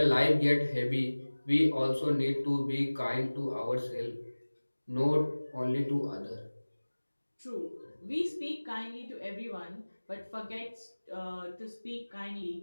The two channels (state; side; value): inverted; both; correlation -1.00